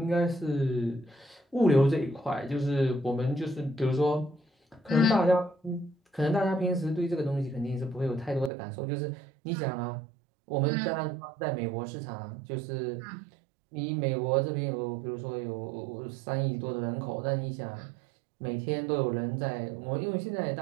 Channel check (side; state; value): left; drops out; at 8.5 s